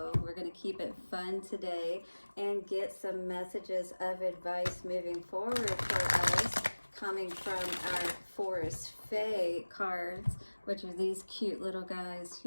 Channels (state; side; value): inverted; both; correlation -1.00